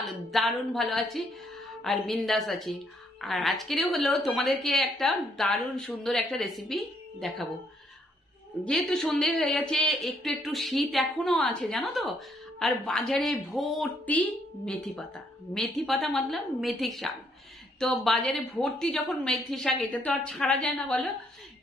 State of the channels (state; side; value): normal; both; correlation 0.70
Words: দারুণ ভালো আছি আর বিন্দাস আছি। আর আজকেরও হলো তোমাদেরকে একটা দারুণ সুন্দর একটা রেসিপি দেখাবো। যেহেতু সন্ধ্যে হয়ে গেছে, একটু একটু শীত এখনো আছে জানো তো, আর বাজারে ভর্তি মেথি পাতা। মেথি পাতা মতলব মেথি শাক। তো বাজারে ভর্তি যখন মেথি শাক, এটা তো আর ছাড়া যায় না বলো,